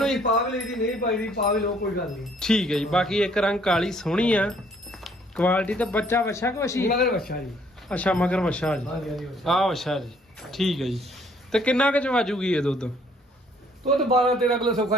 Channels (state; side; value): normal; both; correlation 0.63